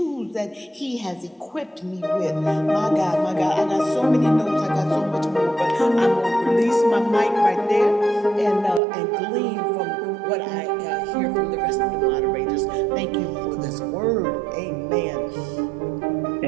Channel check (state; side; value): drops out; left; at 8.8 s